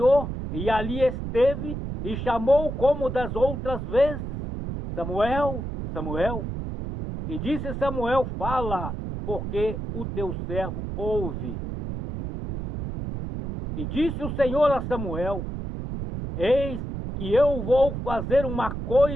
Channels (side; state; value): right; noise; rumble, 5 dB below the sound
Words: e ali esteve e chamou como das outras vezes: Samuel, Samuel. E disse Samuel: fala, porque o teu servo ouve. E disse o Senhor a Samuel: eis que eu vou fazer uma